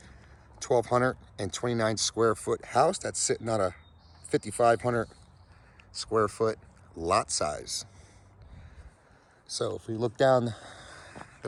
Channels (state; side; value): identical; both; correlation 1.00